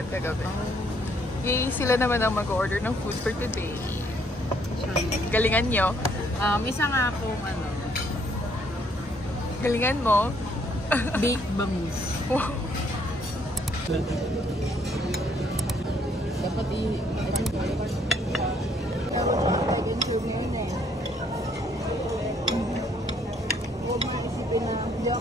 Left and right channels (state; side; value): normal; both; correlation 0.67